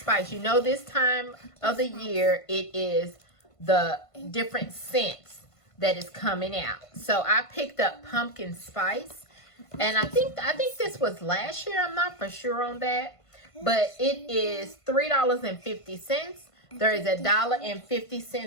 You know, this time of the year, it is the different scents that is coming out. So I picked up Pumpkin Spice, and I think this was last year. I'm not for sure on that, but it is $3.50. There is a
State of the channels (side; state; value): right; late; 1.5 ms